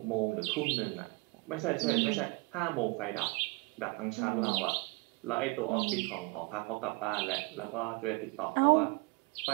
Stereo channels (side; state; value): left; quieter; 25.8 dB